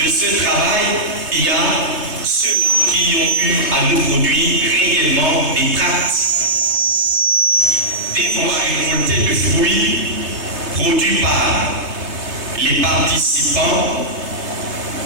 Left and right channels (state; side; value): late; left; 3.2 ms